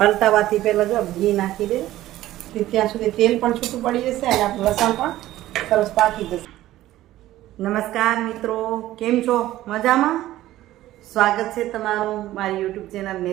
પહેલાં જો ઘી નાખી દે, ત્યાં સુધી તેલ પણ છૂટું પડી જશે અને આપણું લસણ પણ સરસ પાકી જશે. નમસ્કાર મિત્રો, કેમ છો? મજામાં? સ્વાગત છે તમારું મારી YouTube channel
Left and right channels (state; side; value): quieter; left; 14.9 dB